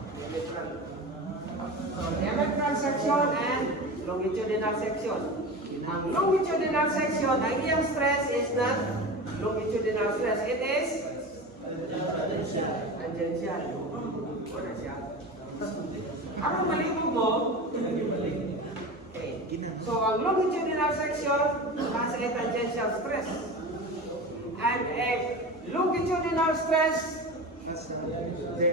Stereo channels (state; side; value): normal; both; correlation 0.29